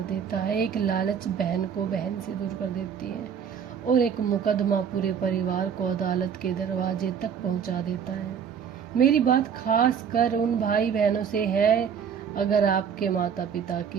देता है, एक लालच बहन को बहन से दूर कर देती है, और एक मुकदमा पूरे परिवार को अदालत के दरवाजे तक पहुंचा देता है। मेरी बात खास कर उन भाई बहनों से है, अगर आपके माता पिता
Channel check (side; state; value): left; quieter; 7.5 dB